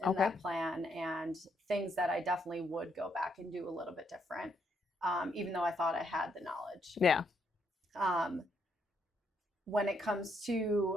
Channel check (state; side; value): normal; both; correlation 0.75